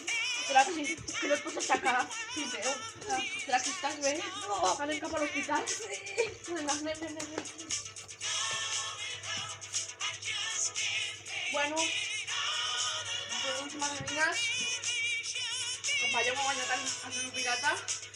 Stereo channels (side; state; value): both; identical; correlation 1.00